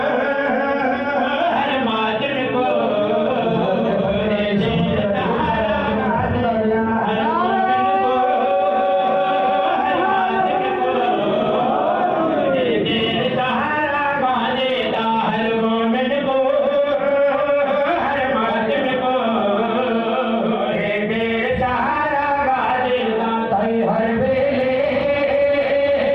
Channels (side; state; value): both; identical; correlation 1.00